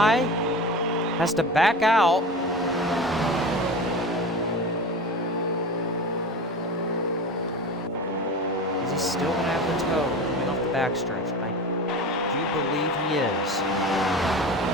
Has to back out. Is he still going to have the toe coming off the backstretch? I do believe he is.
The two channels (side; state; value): both; normal; correlation 0.32